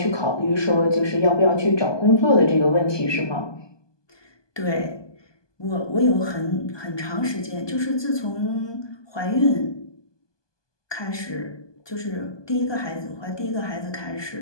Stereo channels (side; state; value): right; late; 1.2 ms